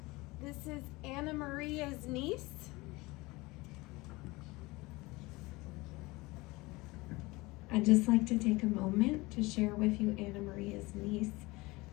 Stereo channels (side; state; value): right; quieter; 22.3 dB